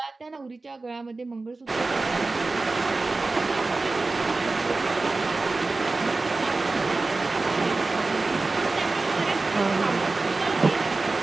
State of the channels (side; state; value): left; quieter; 3.5 dB